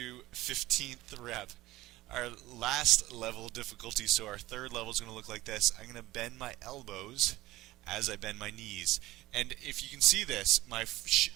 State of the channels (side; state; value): left; quieter; 17.6 dB